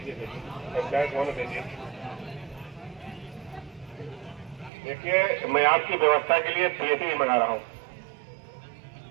देखिए, मैं आपकी व्यवस्था के लिए पीएसी मंगा रहा हूँ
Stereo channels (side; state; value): left; drops out; at 4.7 s